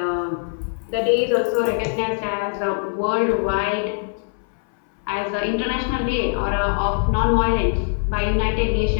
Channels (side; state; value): right; silent; 62 dB below the other